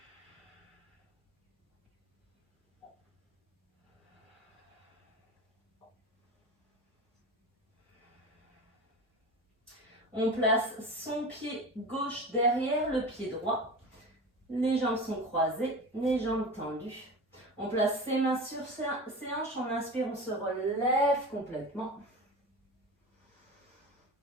On place son pied gauche derrière le pied droit. Les jambes sont croisées, les jambes tendues. On place ses mains sur ses hanches. On inspire, on se relève complètement.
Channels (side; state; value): both; normal; correlation 0.31